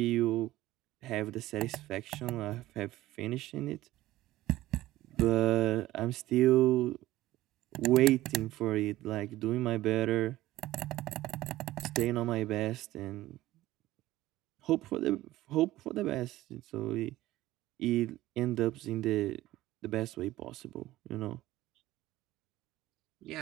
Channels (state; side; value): quieter; left; 16.2 dB